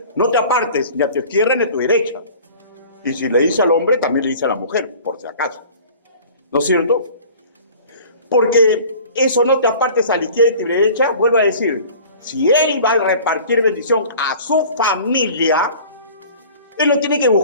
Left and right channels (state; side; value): inverted; both; correlation -0.44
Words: no te apartes ni a tu izquierda ni a tu derecha. Y si le dice al hombre, también le dice a la mujer, por si acaso. ¿No es cierto? Porque eso no te apartes a la izquierda y a tu derecha, vuelvo a decir, si él va a repartir bendición a su familia, él no tiene que